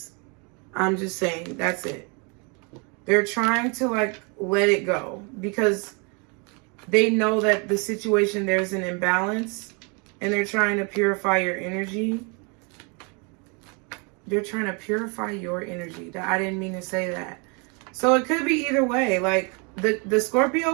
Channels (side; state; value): left; quieter; 33.1 dB